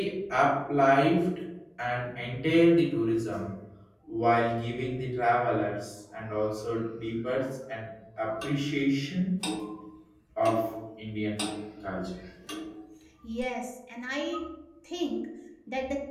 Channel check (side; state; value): both; identical; correlation 1.00